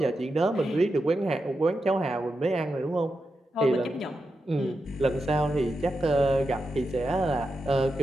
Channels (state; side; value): normal; both; correlation 0.88